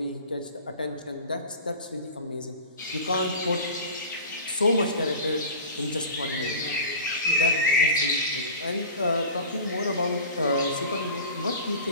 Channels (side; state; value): both; inverted; correlation -0.36